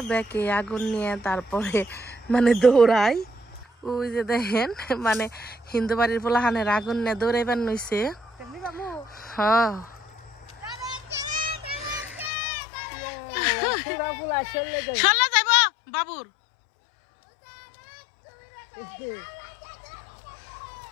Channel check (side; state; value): right; drops out; at 12.3 s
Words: ব্যাগে আগুন নিয়ে তারপরে মানে দৌড়াই। ওই যে দেখেন মানে হিন্দু বাড়ির পোলাহানের আগুন নিয়ে দৌড়াইবার নইছে। হ্যাঁ চলে যাইব বাবুর।